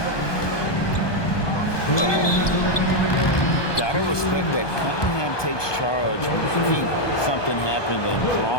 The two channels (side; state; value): right; late; 1.2 ms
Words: Gotta respect that Cunningham takes charge, making something happen and